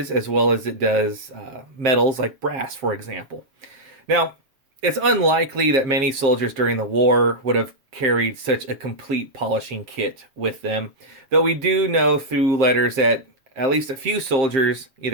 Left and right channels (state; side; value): late; left; 7.5 ms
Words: as well as it does metals like brass, for example. Now, it's unlikely that many soldiers during the war would have carried such a complete polishing kit with them, though we do know through letters that at least a few soldiers